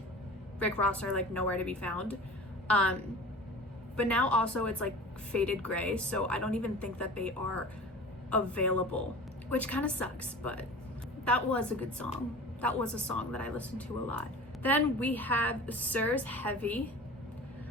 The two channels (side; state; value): both; normal; correlation 0.38